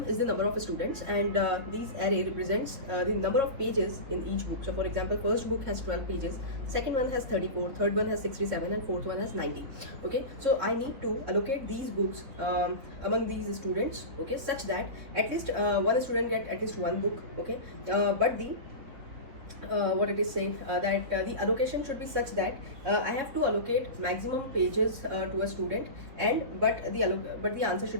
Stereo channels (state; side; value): late; left; 3.7 ms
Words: is the number of students and these array represents the number of pages in each book. So for example, first book has 12 pages, second one has 34, third one has 67 and fourth one has 90. Okay, so I need to allocate these books among these students, okay, such that at least one student get at least one book. Okay, but the what it is saying that the allocation should be such that I have to allocate maximum pages to a student, and but the answer